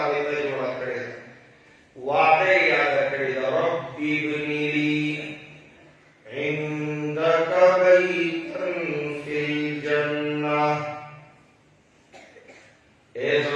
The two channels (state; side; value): identical; both; correlation 1.00